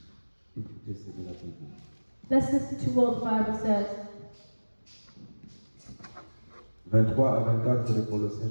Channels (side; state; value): both; inverted; correlation -1.00